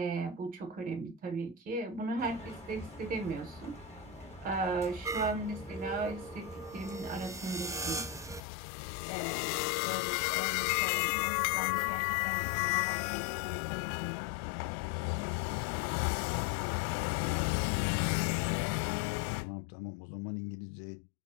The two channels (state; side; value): drops out; right; at 8.4 s